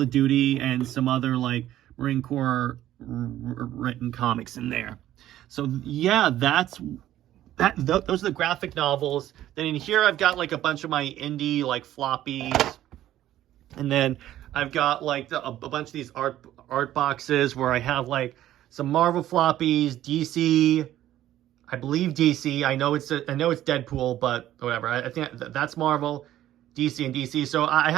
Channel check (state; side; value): quieter; left; 13.1 dB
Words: of Duty and some other like Marine Corps written comics in there. So yeah, those are the graphic novels. Then in here I've got like a bunch of my indie like floppies. And then I've got like a bunch of these art boxes where I have like some Marvel floppies, DC, I believe DC. I know it's Deadpool, but whatever. I think that's Marvel, DC, and DC. So I